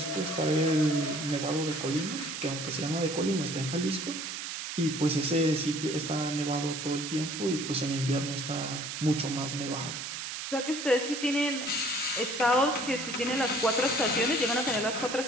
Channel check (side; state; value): right; noise; hiss, 6 dB below the sound